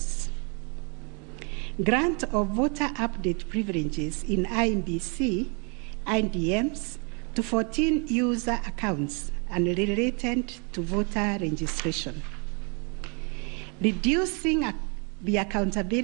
Grant of voter update privileges in IEBC, IDMs, to 14 user accounts and related to voter registration. Reducing the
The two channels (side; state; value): left; quieter; 35.3 dB